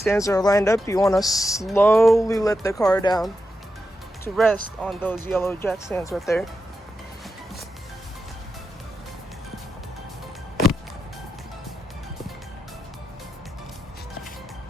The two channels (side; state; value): both; normal; correlation 0.88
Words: are lined up, you want to slowly let the car down to rest on those yellow jack stands right there.